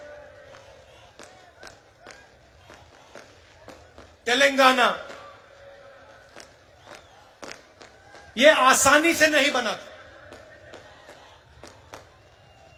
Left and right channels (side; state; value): both; identical; correlation 1.00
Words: तेलंगाना, ये आसानी से नहीं बना था।